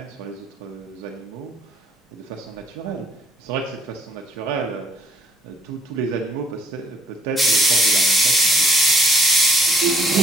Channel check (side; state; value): both; normal; correlation 0.65